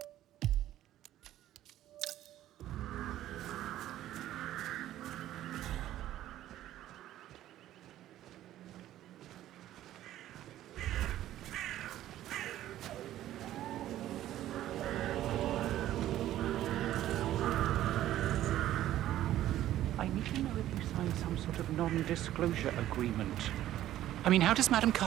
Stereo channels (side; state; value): left; quieter; 13.2 dB